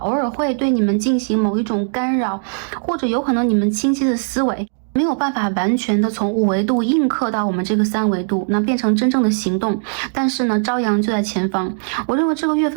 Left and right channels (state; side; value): silent; left; digital silence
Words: 偶尔会对你们进行某一种干扰，或者有可能你们清晰的思维没有办法完全的从5维度映刻到我们这个3维度，那变成真正的行动。但是呢，朝阳就在前方。我认为这个月